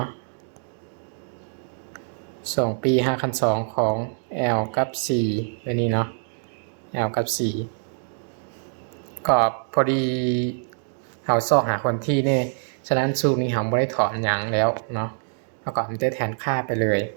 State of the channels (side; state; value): left; silent; digital silence